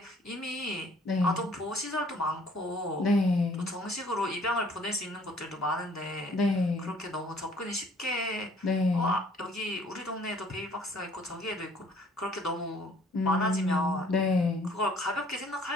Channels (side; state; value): both; normal; correlation 0.58